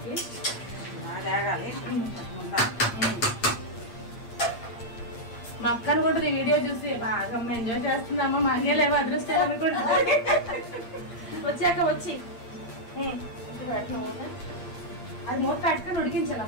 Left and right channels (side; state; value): right; late; 8.7 ms